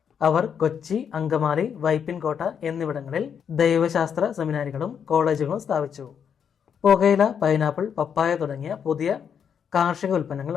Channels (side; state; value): right; quieter; 7.6 dB